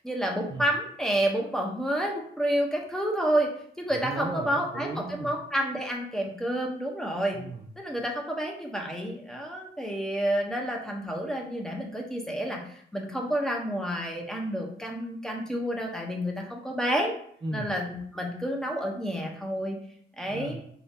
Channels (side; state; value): both; normal; correlation 0.75